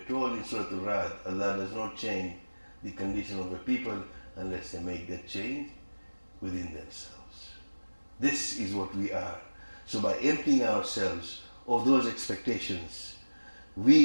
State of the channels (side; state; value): both; inverted; correlation -1.00